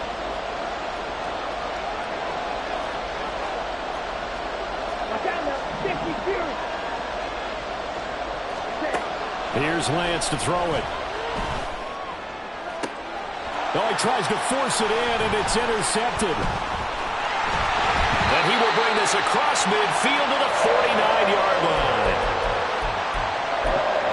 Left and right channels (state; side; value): identical; both; correlation 1.00